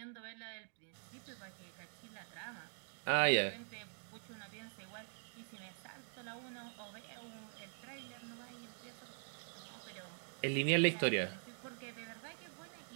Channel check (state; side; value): silent; left; digital silence